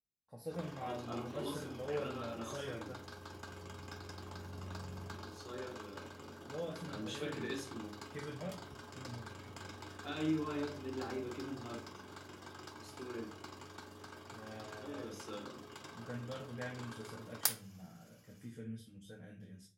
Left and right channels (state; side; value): identical; both; correlation 1.00